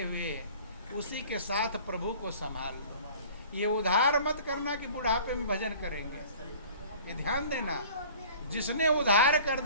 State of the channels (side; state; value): both; inverted; correlation -0.46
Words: हुए उसी के साथ प्रभु को संभाल लो। ये उधार मत करना कि बुढ़ापे में भजन करेंगे, ये ध्यान देना। जिसने उधार कर